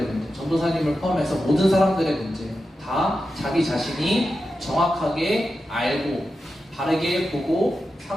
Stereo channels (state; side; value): normal; both; correlation 0.90